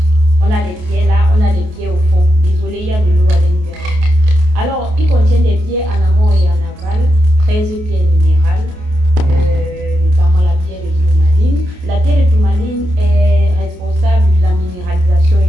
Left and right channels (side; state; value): left; late; 28 ms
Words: On a des pierres là, on a des pierres au fond. Désolé, il y a de l'eau à l'intérieur. Alors, il contient des pierres en amont et en aval, 13 pierres minérales, notamment la pierre de tourmaline. La pierre de tourmaline est responsable de la minéralisation et